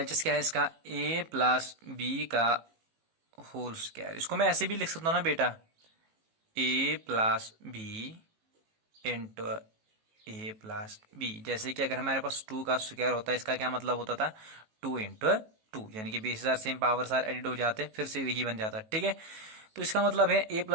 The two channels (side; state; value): left; late; 18 ms